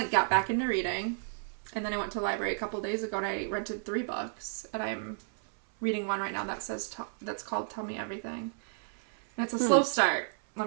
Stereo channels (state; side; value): silent; left; 56 dB below the other